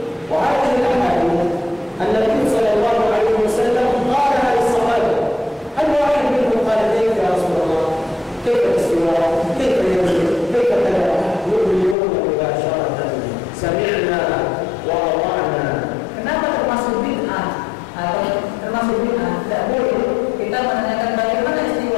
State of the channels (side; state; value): right; drops out; at 12.0 s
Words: وهذه الأحاديث النبي صلى الله عليه وسلم قالها للصحابة. هل واحد منهم قال كيف يا رسول الله؟ كيف الاستواء؟ كيف ينزل؟ كيف كذا؟ يؤمنون مباشرة سمعنا وأطعنا. Kenapa termasuk bid'ah atau termasuk bid'ah? Tidak boleh kita menanyakan bagaimana